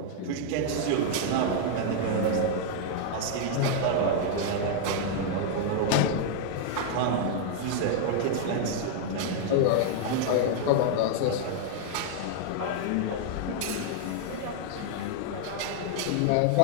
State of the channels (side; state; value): both; different; correlation 0.00